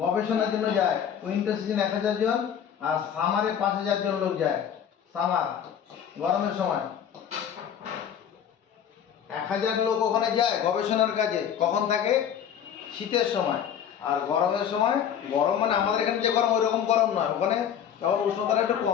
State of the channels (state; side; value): quieter; right; 8.7 dB